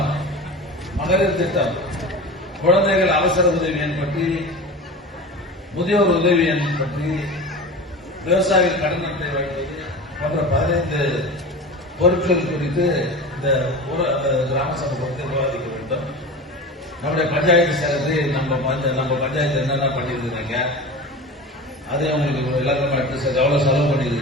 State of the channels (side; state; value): both; normal; correlation 0.31